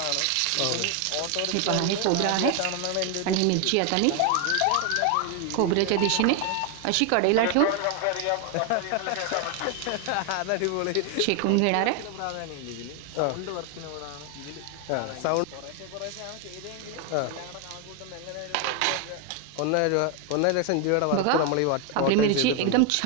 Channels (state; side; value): different; both; correlation 0.01